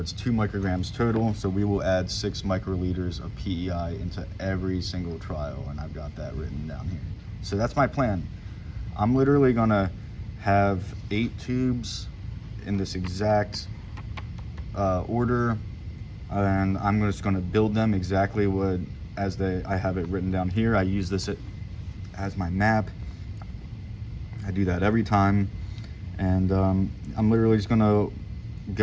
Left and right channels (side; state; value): both; identical; correlation 1.00